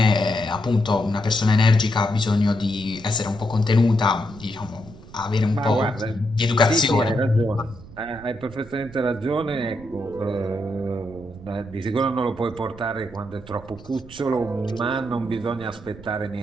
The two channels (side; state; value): right; noise; rumble, 19 dB below the sound